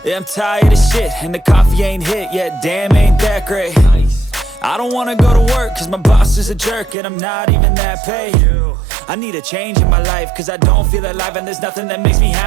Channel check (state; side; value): drops out; left; at 7.0 s